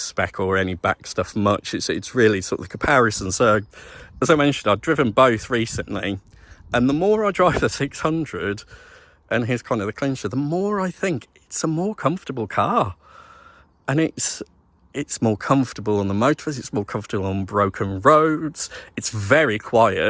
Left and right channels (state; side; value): identical; both; correlation 1.00